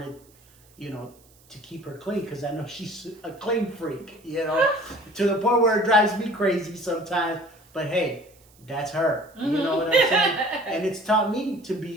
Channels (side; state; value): right; noise; hiss, 29 dB below the sound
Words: to keep her clean, because I know she's a clean freak, to the point where it drives me crazy sometimes. But hey, that's her. You know what I'm saying? And it's taught me to